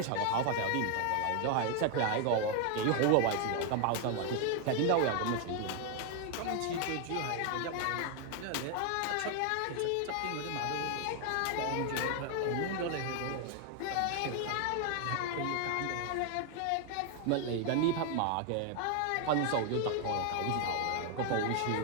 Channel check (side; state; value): both; different; correlation 0.01